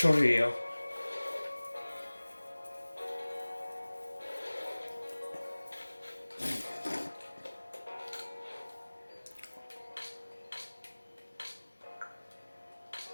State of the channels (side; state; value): both; inverted; correlation -1.00